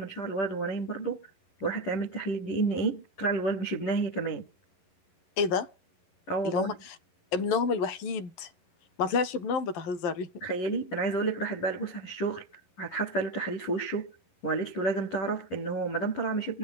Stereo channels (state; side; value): late; right; 11 ms